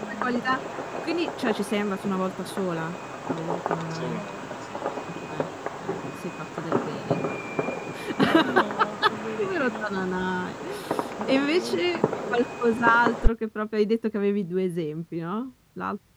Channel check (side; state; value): both; identical; correlation 1.00